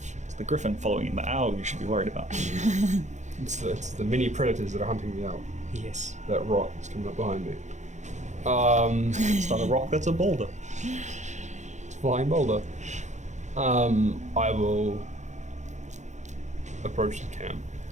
It's the griffin following the owl you should be worried about. It's the mini predators that are hunting me out. Yes. That rock is coming up behind me. It's not a rock, that's a boulder. It's a flying boulder. I will approach the camp.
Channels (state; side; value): late; left; 0.34 ms